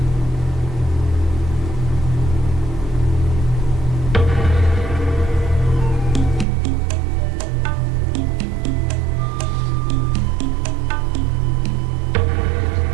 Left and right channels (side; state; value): left; drops out; at 6.5 s